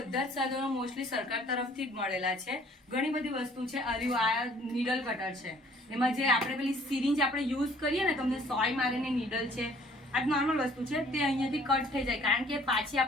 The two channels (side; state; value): both; normal; correlation 0.57